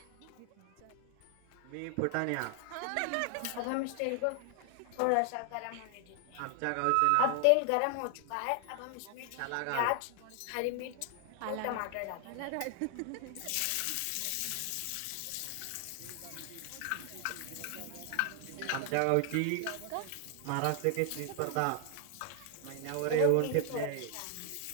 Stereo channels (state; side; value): different; both; correlation 0.00